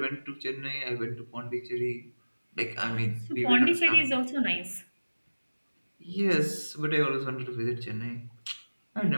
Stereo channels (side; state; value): both; inverted; correlation -1.00